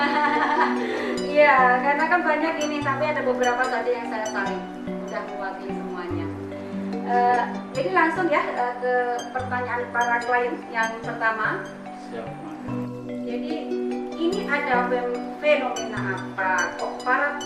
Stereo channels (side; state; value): both; identical; correlation 1.00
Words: Iya, karena kan banyak ini, tapi ada beberapa saja yang saya saring, mudah mewakili semuanya. Jadi langsung ya ke pertanyaan para klien yang pertama. Siap. Jadi ini ada fenomena apa? Kok para